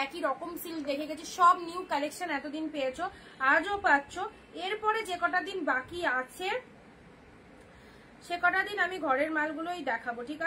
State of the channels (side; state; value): both; identical; correlation 1.00